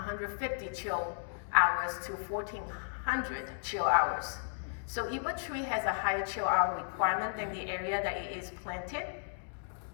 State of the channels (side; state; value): right; silent; digital silence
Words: chill hours to 1,400 chill hours. So if a tree has a high chill hour requirement than the area that it is planted,